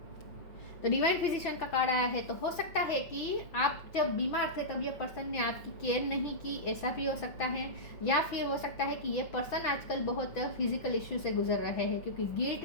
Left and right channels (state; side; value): late; right; 6.0 ms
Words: तो डिवाइन फिजिशियन का कार्ड आया है, तो हो सकता है कि आप जब बीमार थे तब ये पर्सन ने आपकी केयर नहीं की, ऐसा भी हो सकता है। या फिर हो सकता है कि ये पर्सन आजकल बहुत फिजिकल इश्यू से गुजर रहे हैं, क्योंकि